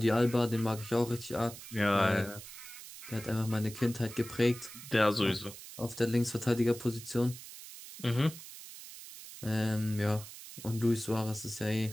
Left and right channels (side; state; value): right; noise; hiss, 14 dB below the sound